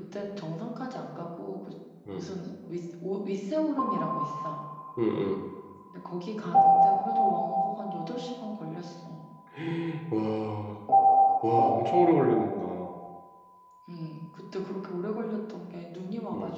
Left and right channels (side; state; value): both; identical; correlation 1.00